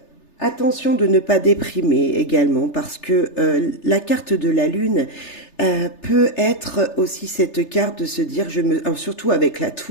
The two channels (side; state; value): right; late; 3.3 ms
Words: Attention de ne pas déprimer également, parce que la carte de la lune peut être aussi cette carte de se dire, surtout avec la